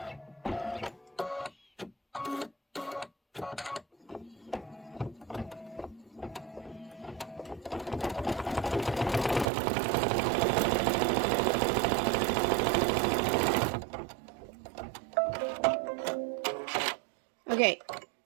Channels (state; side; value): drops out; left; at 9.5 s